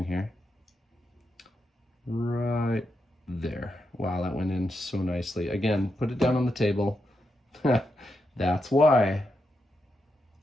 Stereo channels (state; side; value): normal; both; correlation 0.85